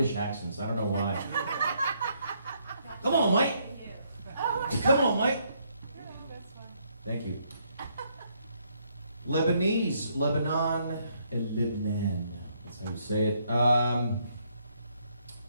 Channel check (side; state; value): both; inverted; correlation -0.72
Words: accents. I don't know why. Come on, Mike. Come on, Mike. Thank you. Lebanese, Lebanon, and Lebanon. That's how you say it. I